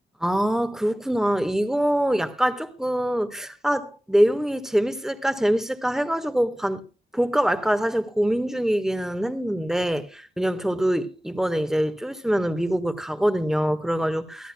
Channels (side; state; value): both; normal; correlation 0.98